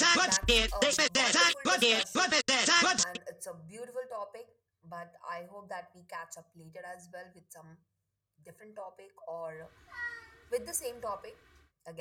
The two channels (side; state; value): both; identical; correlation 1.00